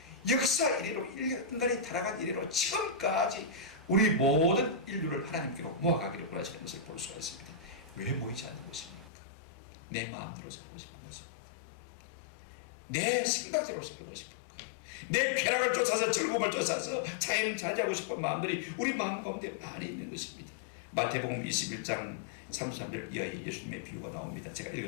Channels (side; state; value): right; drops out; at 9.1 s